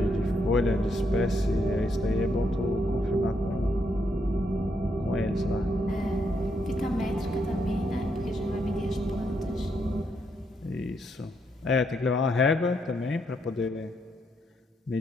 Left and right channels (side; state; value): both; normal; correlation 0.77